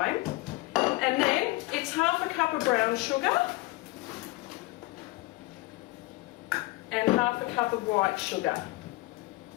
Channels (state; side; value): quieter; right; 21.2 dB